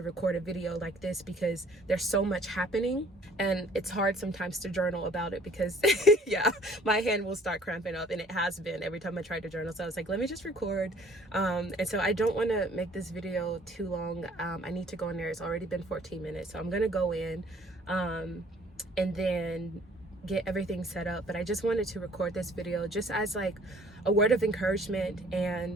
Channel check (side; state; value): both; normal; correlation 0.56